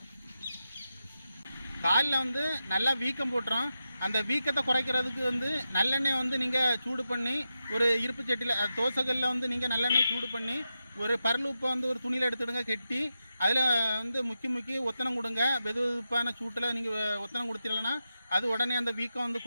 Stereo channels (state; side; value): inverted; both; correlation -0.89